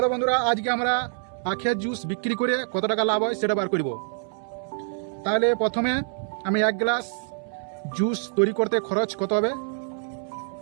বন্ধুরা, আজকে আমরা আখের জুস বিক্রি করে কত টাকা লাভ হয় সেটা বার করব। তাহলে প্রথমে আমি 1 গ্লাস জুস তৈরি করতে খরচ কত হবে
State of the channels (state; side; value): silent; left; 61 dB below the other